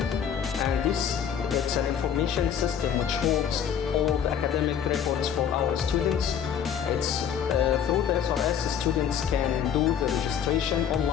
and it's an information system which holds all the academic records for our students. It's through the SRS, students can do the registration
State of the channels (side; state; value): right; quieter; 8.4 dB